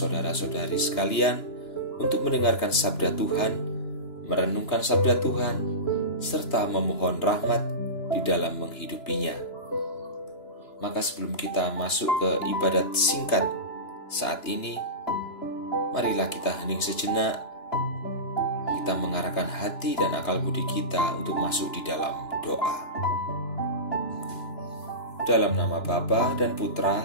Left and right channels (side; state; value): right; late; 2.9 ms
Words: sekalian untuk mendengarkan sabda Tuhan, merenungkan sabda Tuhan, serta memohon rahmat di dalam menghidupinya. Maka sebelum kita masuk ke ibadat singkat saat ini, marilah kita hening sejenak. Kita mengarahkan hati dan akal budi kita untuk masuk di dalam doa. Dalam nama Bapa dan